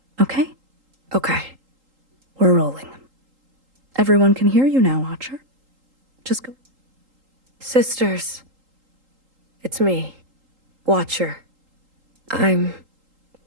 okay? Okay. We're rolling. Everyone can hear you now, Watcher. Just go. Sisters. It's me, Watcher. I'm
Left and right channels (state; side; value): late; left; 3.8 ms